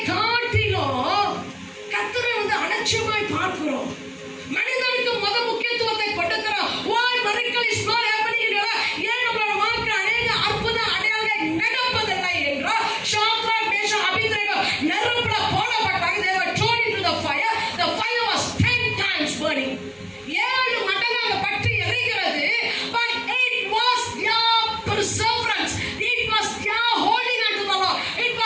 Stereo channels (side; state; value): both; identical; correlation 1.00